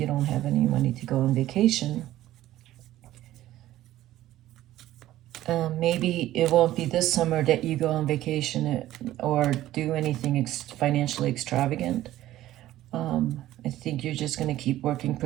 don't have any money to go on vacation, maybe it won't be this summer that you go on vacation or do anything financially extravagant. I think you're just going to keep working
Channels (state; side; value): quieter; left; 14.4 dB